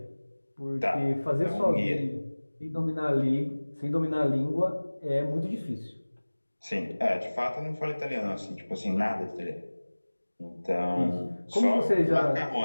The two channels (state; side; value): inverted; both; correlation -1.00